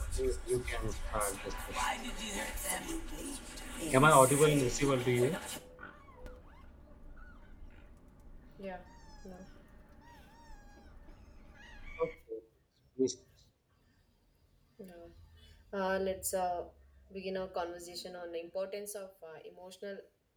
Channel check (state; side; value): identical; both; correlation 1.00